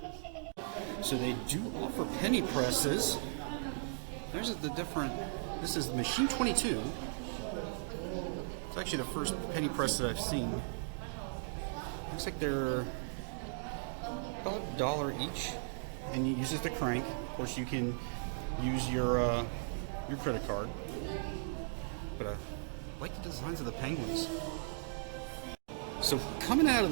So they do offer penny presses. There's the different. This is machine 22. It's actually the first penny press that I've seen. Looks like they're about $1 each, and you use it to crank. Of course, you can use your credit card. But I like the designs of the penguins. So coming out of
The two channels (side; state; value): left; silent; digital silence